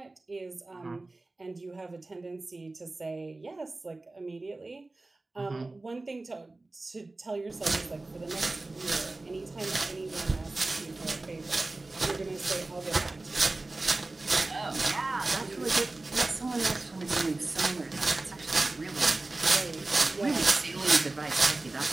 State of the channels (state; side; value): quieter; left; 3.1 dB